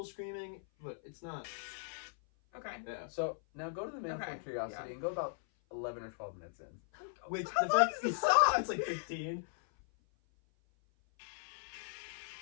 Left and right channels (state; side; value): silent; right; 53 dB below the other